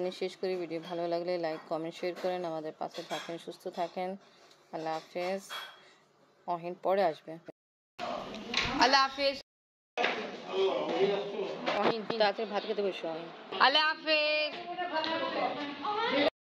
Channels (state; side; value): identical; both; correlation 1.00